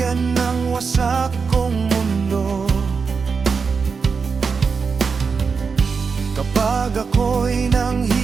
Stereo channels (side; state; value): left; quieter; 5.3 dB